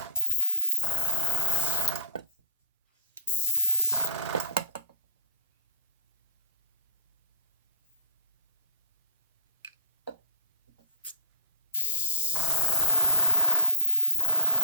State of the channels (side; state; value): both; inverted; correlation -0.39